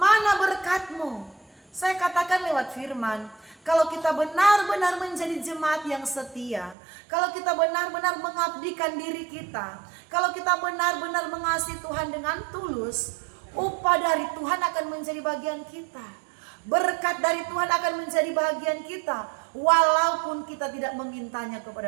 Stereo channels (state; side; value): drops out; left; at 6.8 s